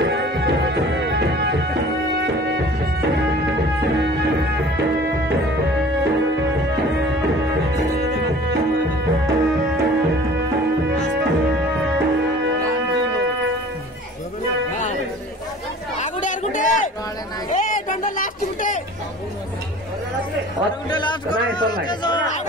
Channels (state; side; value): normal; both; correlation 0.46